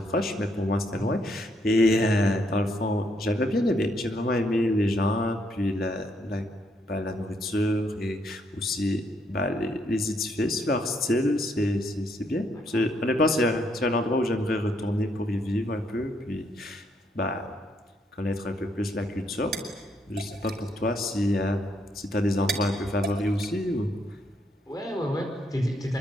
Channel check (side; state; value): both; normal; correlation 0.73